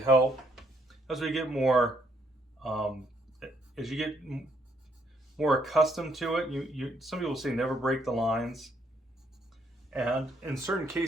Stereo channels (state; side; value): normal; both; correlation 0.71